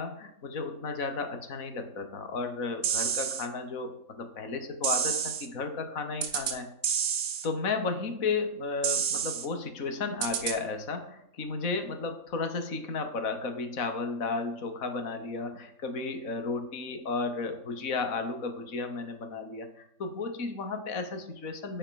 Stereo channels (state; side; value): late; right; 3.6 ms